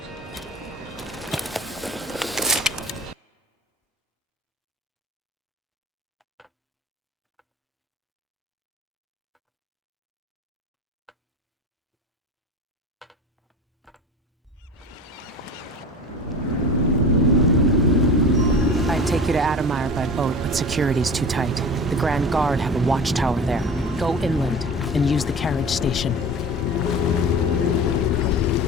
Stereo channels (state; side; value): normal; both; correlation 0.34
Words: Adamire by boat, but security's too tight. The Grand Guard have a watchtower there. Go inland and use the carriage station.